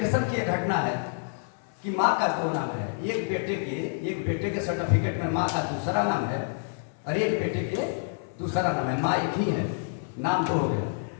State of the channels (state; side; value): silent; right; 59 dB below the other